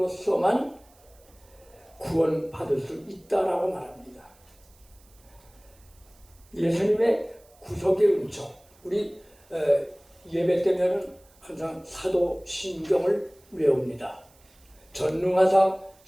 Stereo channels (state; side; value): noise; right; hiss, 29 dB below the sound